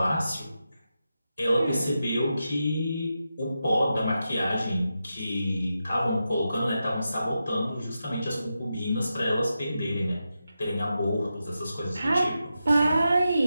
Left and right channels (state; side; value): inverted; both; correlation -0.89